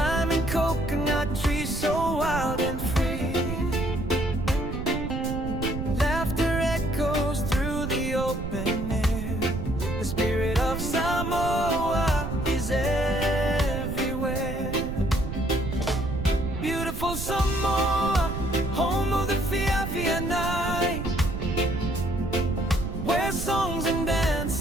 coconut trees so wild and free. Laughter echoes through the open air. The spirit of Samoa is everywhere. Beautiful Samoa, home of the Fiafia night, where songs and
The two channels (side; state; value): right; noise; rumble, 5 dB below the sound